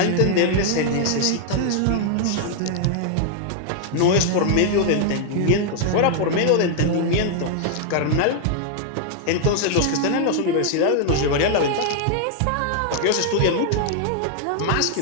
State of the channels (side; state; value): both; different; correlation 0.00